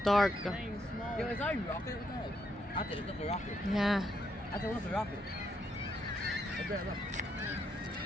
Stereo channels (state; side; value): normal; both; correlation 0.76